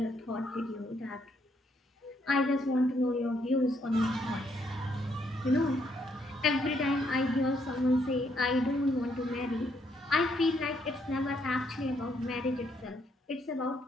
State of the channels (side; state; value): both; normal; correlation 0.73